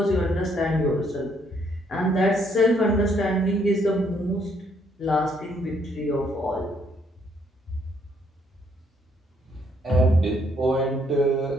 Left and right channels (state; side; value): normal; both; correlation 0.69